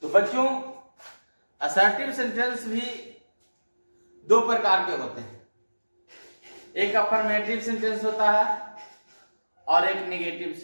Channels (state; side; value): inverted; both; correlation -1.00